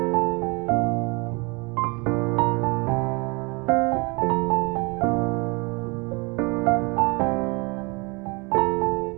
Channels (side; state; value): left; quieter; 28.6 dB